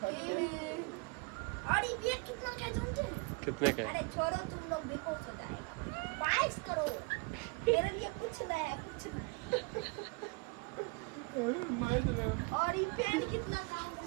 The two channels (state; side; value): quieter; left; 29.0 dB